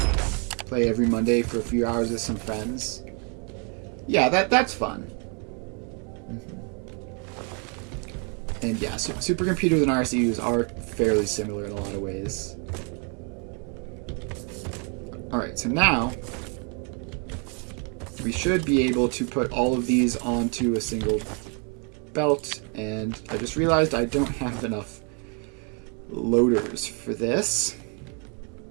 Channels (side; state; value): left; quieter; 37.3 dB